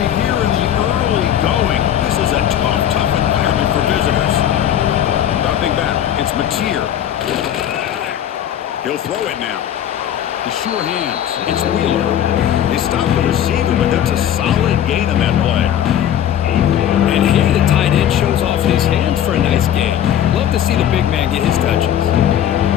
here in the early going. This is a tough environment for visitors. Dropping back, it's Mateer. He'll throw it now. The sure hands, it's Wheeler. They stop the receiver, but that's a solid gain on that play. And here the tight end shows off his hands for a nice gain. Love to see the big man get his touches.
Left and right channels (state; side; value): quieter; right; 10.5 dB